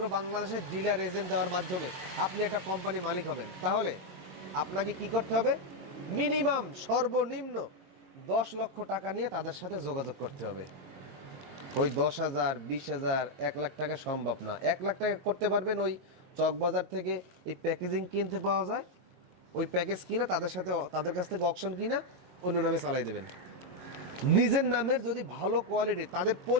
বাংলাদেশের ডিলার এজেন্ট দেওয়ার মাধ্যমে আপনি একটা কোম্পানি মালিক হবেন, তাহলে আপনাকে কি করতে হবে? মিনিমাম সর্বনিম্ন 10 লক্ষ টাকা নিয়ে তাদের সাথে যোগাযোগ করতে হবে। ওই 10,000, 20,000, 1 লাখ টাকা সম্ভব না। 1 লাখ টাকা করতে পারবেন ওই চকবাজার থেকে এই প্যাকেজিং কিনতে পাওয়া যায়, ওই প্যাকেজ কিনা তাদের কাছ থেকে অকশন কিনা অন্য নামে চালাই দেবেন। নিজের নামের যদি ভালো কোয়ালিটি, তাদের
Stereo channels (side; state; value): left; late; 22 ms